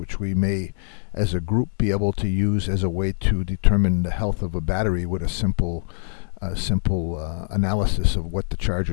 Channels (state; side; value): silent; right; digital silence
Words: we may, as a group, be able to use as a way to determine the health of a battery with a simple analysis of what the